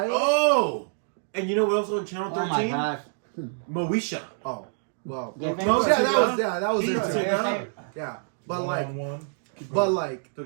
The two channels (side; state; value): left; silent; digital silence